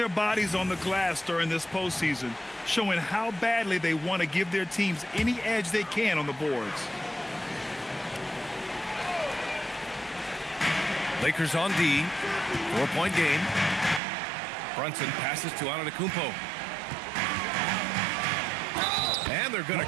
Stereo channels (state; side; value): drops out; left; at 14.0 s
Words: bodies on the glass during this postseason, showing how badly they want to give their teams any edge they can on the boards. Lakers on D. 4-point game. Brunson passes to Antetokounmpo. And they're going